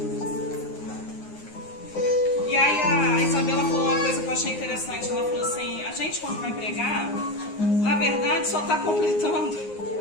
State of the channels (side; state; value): right; late; 9.6 ms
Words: E aí a Isabela falou uma coisa que eu achei interessante. Ela falou assim, a gente quando vai pregar, na verdade só está completando